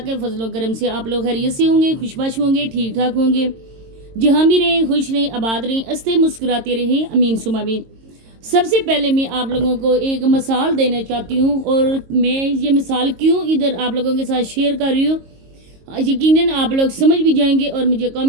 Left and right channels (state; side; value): late; left; 22 ms